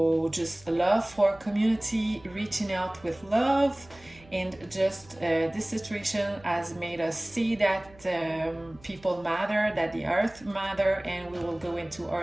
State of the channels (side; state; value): right; noise; hum, 24 dB below the sound